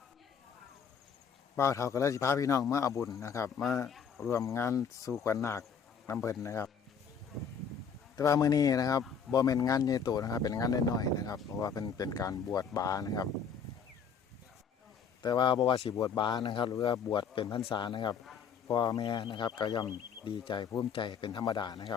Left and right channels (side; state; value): right; quieter; 6.6 dB